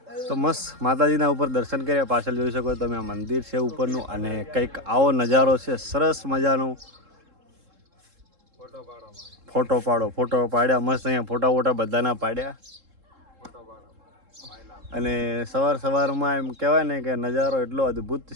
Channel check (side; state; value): left; late; 3.7 ms